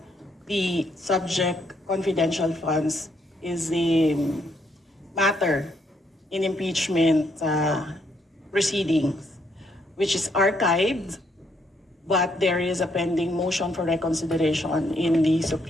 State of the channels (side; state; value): both; normal; correlation 0.73